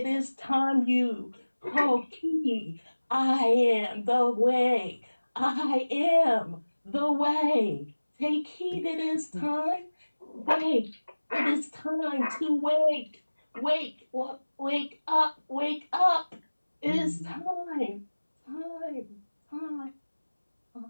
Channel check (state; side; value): inverted; both; correlation -1.00